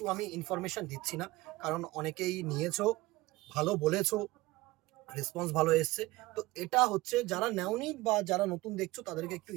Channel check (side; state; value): left; quieter; 19.8 dB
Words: আমি ইনফরমেশন দিচ্ছি না, কারণ অনেকেই নিয়েছো, ভালো বলেছো, রেসপন্স ভালো এসছে। তো এটা হচ্ছে যারা নেওনি বা যারা নতুন দেখছো তাদেরকে একটু